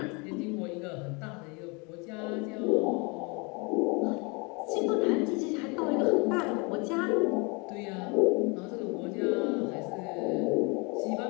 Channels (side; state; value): right; quieter; 30.0 dB